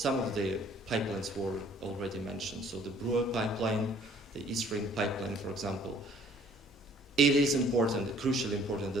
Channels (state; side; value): normal; both; correlation 0.57